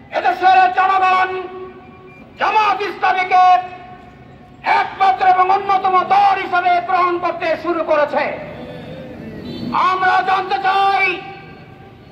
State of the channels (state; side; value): identical; both; correlation 1.00